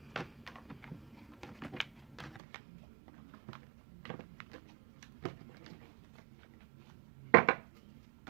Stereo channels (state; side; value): drops out; left; at 2.4 s